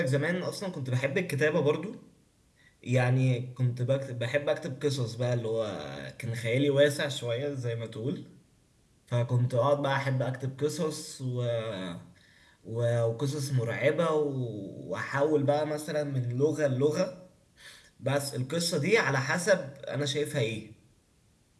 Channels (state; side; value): identical; both; correlation 1.00